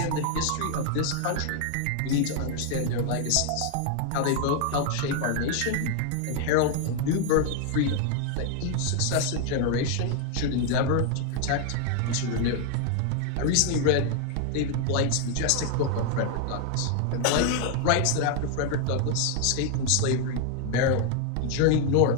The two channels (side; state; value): both; different; correlation 0.00